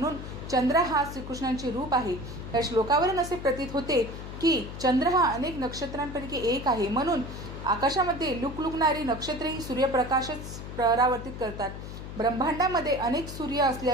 चंद्र हा श्रीकृष्णांचे रूप आहे. या श्लोकावरून असे प्रतीत होते की चंद्र हा अनेक नक्षत्रांपैकी एक आहे, म्हणून आकाशामध्ये लुकलुकणारी नक्षत्रेही सूर्यप्रकाशच परावर्तित करतात. ब्रह्मांडामध्ये अनेक सूर्य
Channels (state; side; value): noise; left; hum, 10 dB below the sound